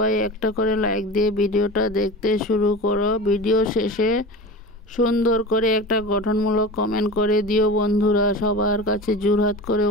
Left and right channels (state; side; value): normal; both; correlation 0.31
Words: একটা করে লাইক দিয়ে ভিডিওটা দেখতে শুরু করো। ভিডিও শেষে সুন্দর করে একটা গঠনমূলক কমেন্ট করে দিও বন্ধুরা। সবার কাছে জোরহাত করে